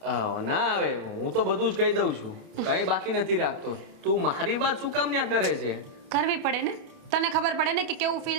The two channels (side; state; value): left; late; 29 ms